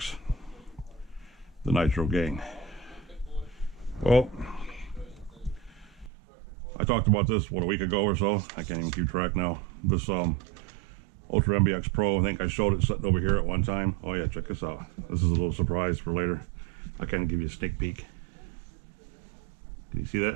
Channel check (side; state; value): left; drops out; at 6.1 s